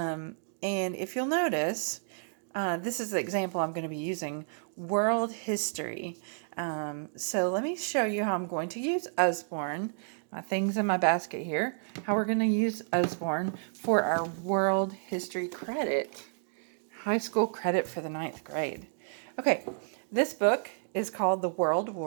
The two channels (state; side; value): silent; left; digital silence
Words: if you'll notice, this is the example I'm going to be using, world history. So let me show you how I'm going to use Usborne, my things in my basket here, how we're going to use Usborne for our world history credit, high school credit for the ninth grade. Okay, this book is called The World